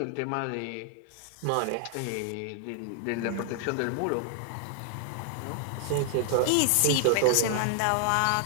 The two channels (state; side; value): different; both; correlation 0.00